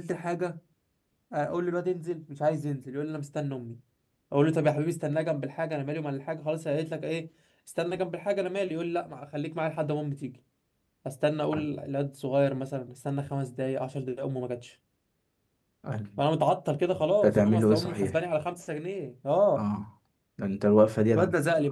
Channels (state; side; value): identical; both; correlation 1.00